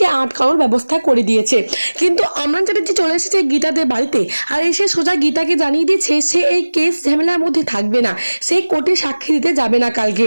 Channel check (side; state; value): both; inverted; correlation -1.00